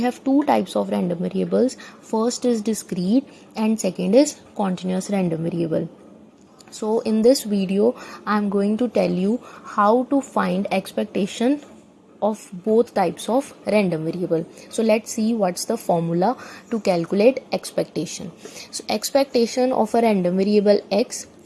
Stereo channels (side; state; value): both; identical; correlation 1.00